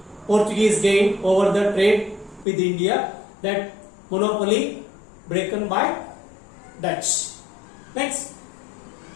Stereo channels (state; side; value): drops out; right; at 2.5 s